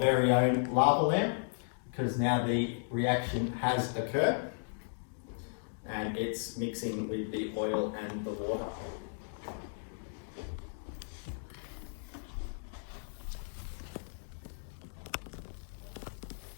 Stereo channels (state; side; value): silent; right; digital silence